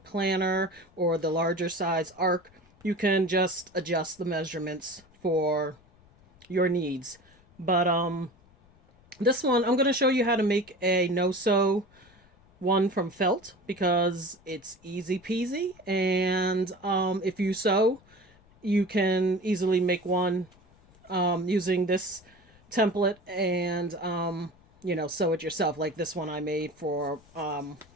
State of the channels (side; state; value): left; noise; rumble, 29 dB below the sound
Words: planner or the larger size ARC, you can just adjust the measurements for your needs. But this one, I'm going to show you how to make a no-sew one from felt because it's easy peasy. And if you sew, you can easily make one using this template and, sew it yourself. Like this one I made for